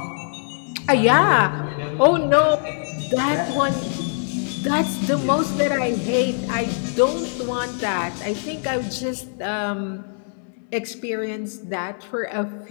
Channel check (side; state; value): right; silent; 64 dB below the other